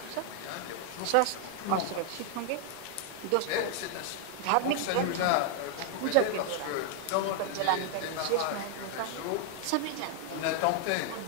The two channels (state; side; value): different; both; correlation 0.00